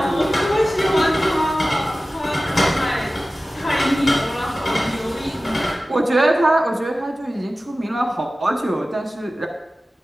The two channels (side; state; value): both; normal; correlation 0.96